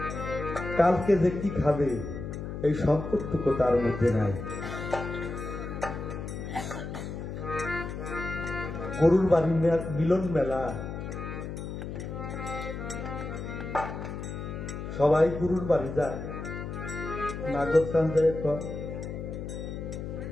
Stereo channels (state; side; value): noise; left; hum, 7 dB below the sound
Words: কালকে যে কি খাবে এই সম্পদটুকু তার মধ্যে নাই। গরুর বাড়ি মিলন মেলা, সবাই গরুর বাড়ি যায়। নাগর চান যায়,